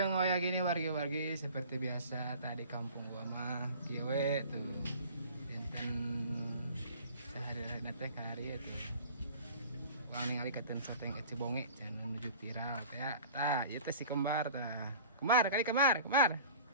waya gini wargi-wargi seperti biasa tadi kampung gua mah kiwe tuh. Dinten sehari-hari teh kari itu. Uang ningali katen soteng eci bonge can menuju viral teh. Tah, ieu teh si kembar tah. Kembar.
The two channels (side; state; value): both; inverted; correlation -0.44